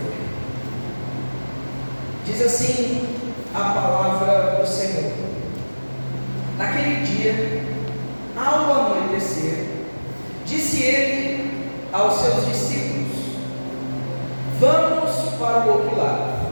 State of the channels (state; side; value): inverted; both; correlation -1.00